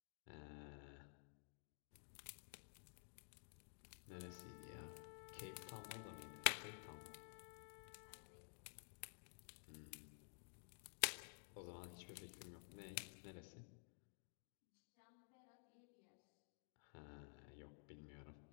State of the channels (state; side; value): silent; right; digital silence